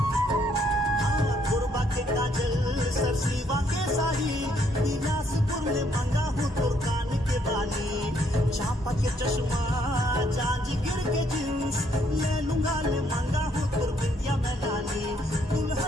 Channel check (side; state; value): both; normal; correlation 0.69